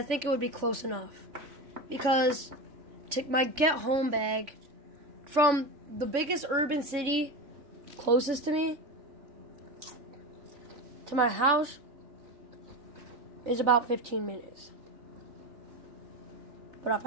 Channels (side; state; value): left; late; 3.5 ms